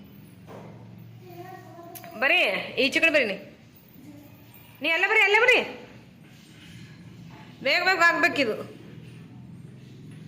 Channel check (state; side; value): identical; both; correlation 1.00